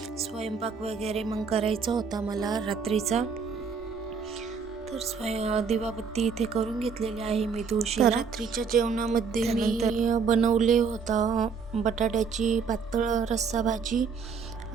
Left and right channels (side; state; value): left; quieter; 5.6 dB